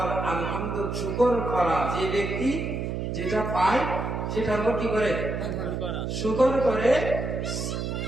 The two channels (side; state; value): right; noise; hum, 3 dB below the sound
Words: আলহামদুলিল্লাহ শুকর করা। যে ব্যক্তি যেটা পায় সেটার উপর কি করে? শুকর করে,